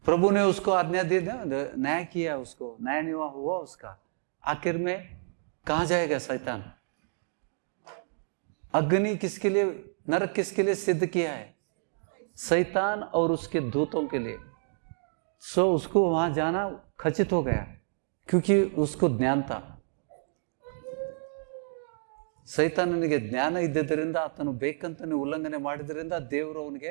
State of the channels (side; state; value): left; silent; digital silence